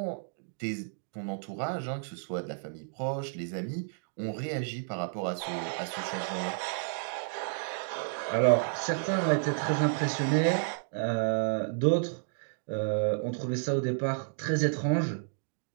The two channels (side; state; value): left; silent; digital silence